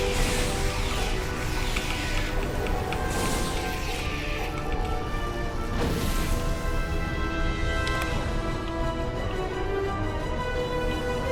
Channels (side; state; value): both; identical; correlation 1.00